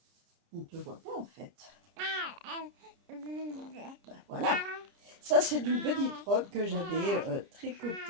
on ne te voit pas en fait. Ben, voilà. Ça c'est d'une petite robe que j'avais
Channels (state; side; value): late; left; 30 ms